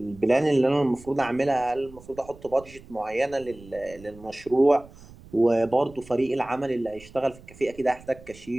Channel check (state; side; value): noise; right; rumble, 21 dB below the sound